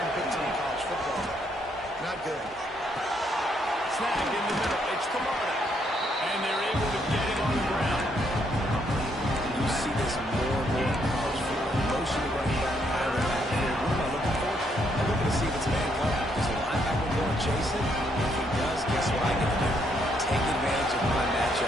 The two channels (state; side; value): normal; both; correlation 0.73